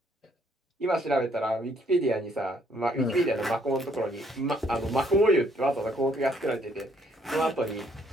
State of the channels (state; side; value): normal; both; correlation 0.67